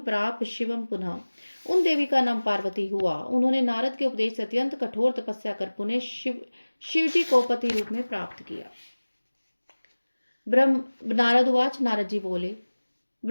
प्राप शिवम पुनः। उन देवी का नाम पार्वती हुआ। उन्होंने नारद के उपदेश से अत्यंत कठोर तपस्या कर पुनः शिव जी को पति रूप में प्राप्त किया। नारद उवाच। नारद जी बोले,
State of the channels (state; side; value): inverted; both; correlation -1.00